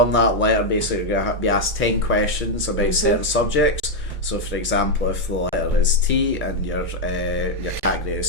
that letter, basically, you're going to be asked 10 questions about certain subjects. So, for example, if the letter is T and your category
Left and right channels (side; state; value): both; normal; correlation 0.01